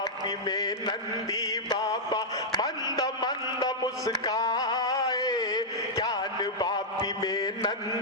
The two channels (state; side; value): normal; both; correlation -0.07